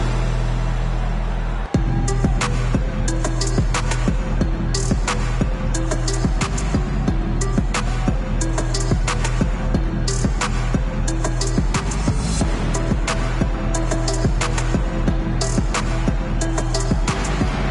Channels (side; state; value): both; identical; correlation 1.00